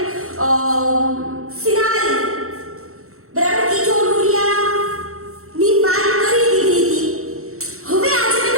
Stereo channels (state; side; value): late; left; 0.63 ms